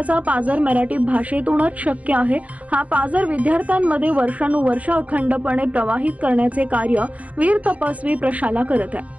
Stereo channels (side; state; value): left; late; 0.069 ms